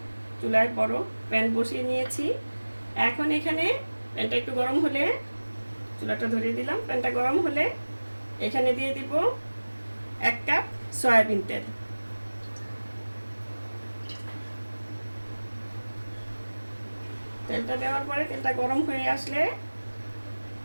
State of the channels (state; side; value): inverted; both; correlation -1.00